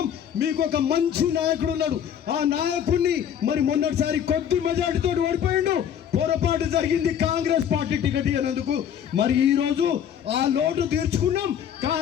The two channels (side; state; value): right; quieter; 9.0 dB